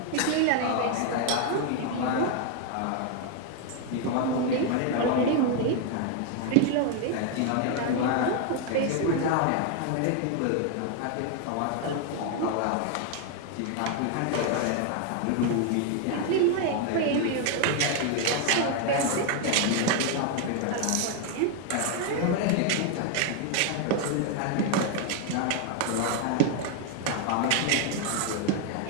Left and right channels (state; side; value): different; both; correlation 0.01